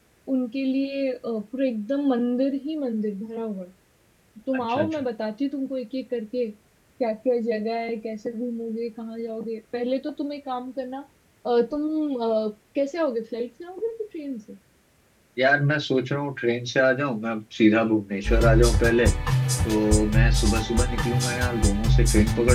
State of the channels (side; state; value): both; identical; correlation 1.00